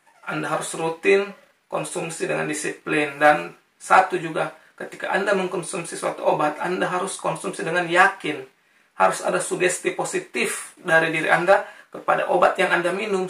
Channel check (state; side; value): identical; both; correlation 1.00